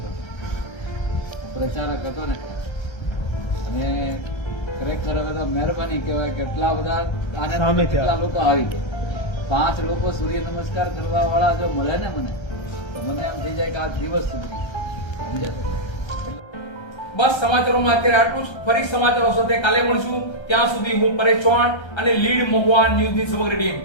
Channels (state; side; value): late; right; 1.3 ms